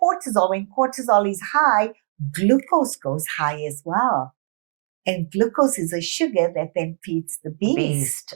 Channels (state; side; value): silent; left; 64 dB below the other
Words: cortisol, when cortisol is high, glucose goes high as well. And glucose is a sugar that then feeds the beast.